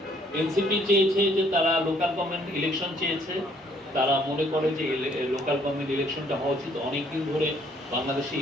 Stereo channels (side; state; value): both; normal; correlation 0.64